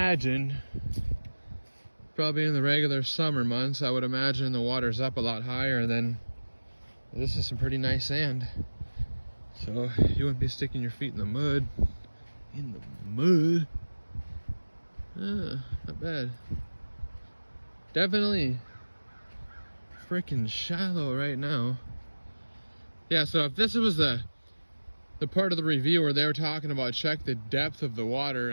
probably in the regular summer months, I would imagine the water's up a lot higher, and then this is some pretty nice sand. So you wouldn't be sticking your feet in the mud. Not bad. Definitely freaking shallow right now. Yeah, so if this was the part of the review where they were talking about check the depth of the water,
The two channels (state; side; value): inverted; both; correlation -1.00